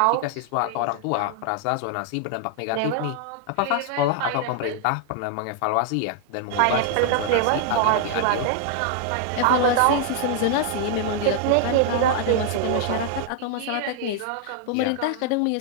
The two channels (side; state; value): both; different; correlation 0.00